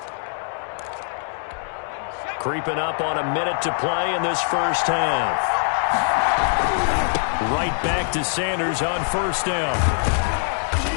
Creeping up on a minute to play in this first half. Right back to Sanders on 1st down.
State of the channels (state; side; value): silent; right; 64 dB below the other